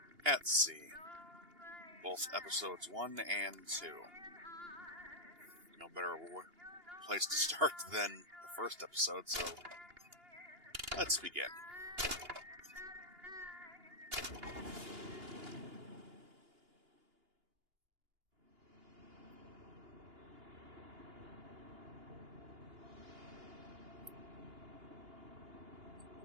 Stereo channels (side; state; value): left; late; 2.8 ms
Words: at Sea. Both episodes 1 and 2. No better place to start than the first episode, so let's begin.